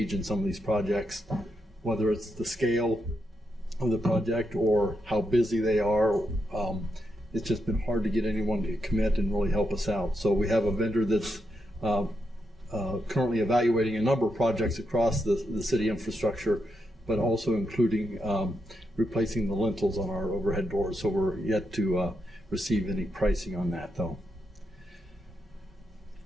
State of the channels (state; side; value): normal; both; correlation 0.83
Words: in some of these projects, whether it's the scale of the project or how busy they are. It's just been hard to get anyone to commit and really help us out. So we have a vendor that's currently evaluating a number of projects across the city infrastructure, but also including replacing the lintels on our overhead doors. So we're yet to receive any pricing on that, though.